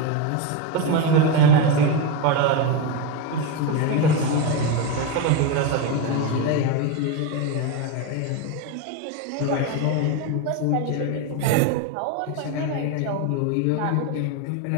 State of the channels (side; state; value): both; different; correlation 0.04